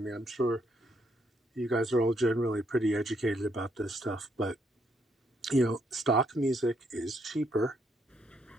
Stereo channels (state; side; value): normal; both; correlation 0.74